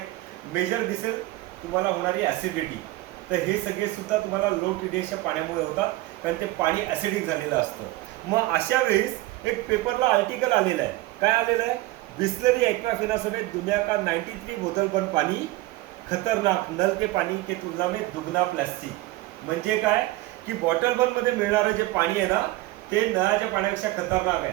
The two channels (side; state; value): left; quieter; 18.4 dB